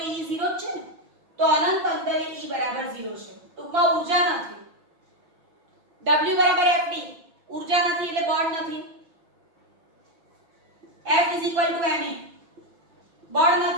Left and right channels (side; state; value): left; late; 6.0 ms